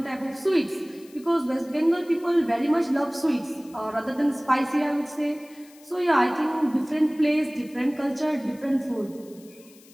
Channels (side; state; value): left; noise; hiss, 25 dB below the sound